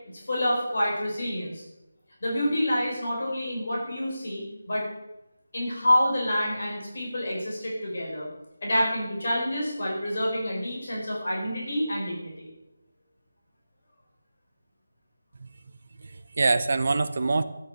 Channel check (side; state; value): both; inverted; correlation -0.93